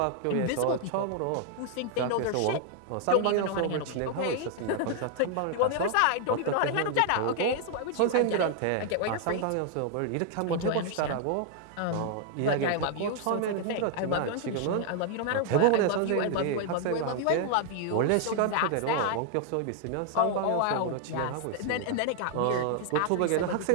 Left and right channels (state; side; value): different; both; correlation 0.00